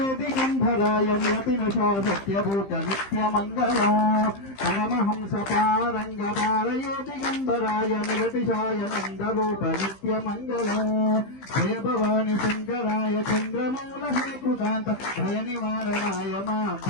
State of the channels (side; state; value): right; late; 15 ms